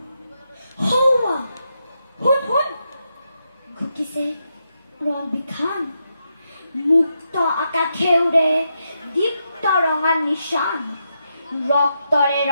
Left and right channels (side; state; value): both; inverted; correlation -0.83